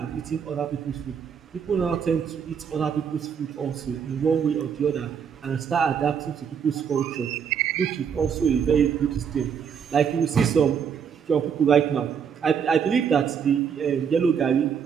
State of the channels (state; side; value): quieter; left; 7.3 dB